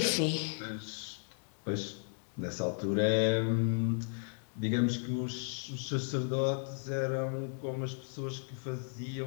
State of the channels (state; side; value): silent; right; 55 dB below the other